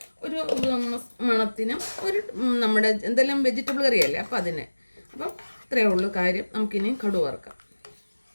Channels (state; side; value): inverted; both; correlation -1.00